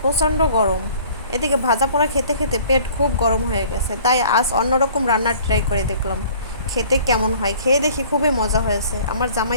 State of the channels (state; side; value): inverted; both; correlation -0.51